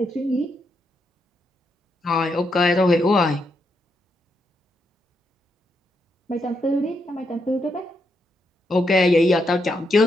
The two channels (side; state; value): both; normal; correlation 0.80